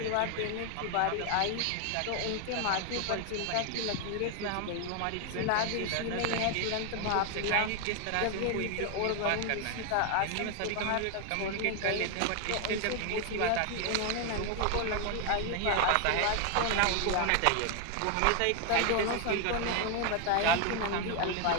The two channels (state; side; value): different; both; correlation 0.01